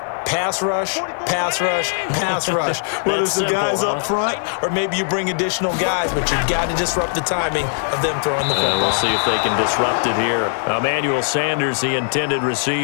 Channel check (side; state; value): right; silent; 62 dB below the other